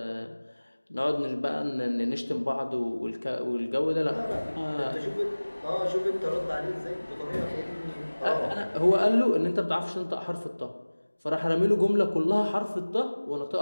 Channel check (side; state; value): both; inverted; correlation -1.00